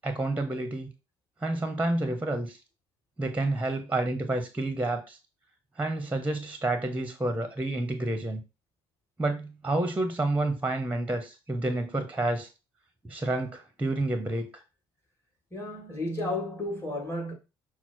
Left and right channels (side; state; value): both; normal; correlation 0.80